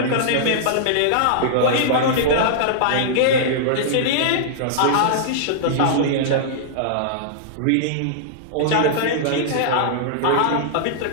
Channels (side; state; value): both; different; correlation -0.02